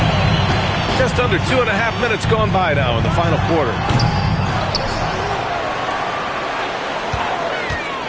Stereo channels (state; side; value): identical; both; correlation 1.00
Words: Just under 2.5 minutes gone by now in the final quarter.